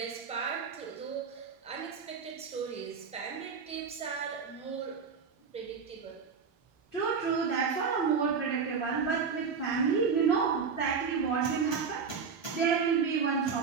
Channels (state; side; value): quieter; left; 5.8 dB